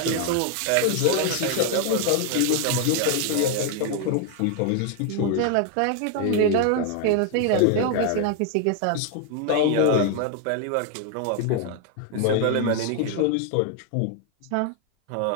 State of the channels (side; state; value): both; different; correlation 0.00